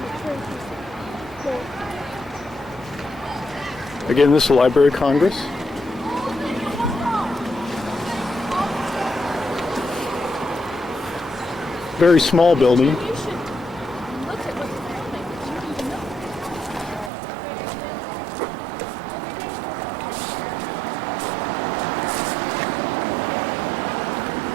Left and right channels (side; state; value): left; drops out; at 17.1 s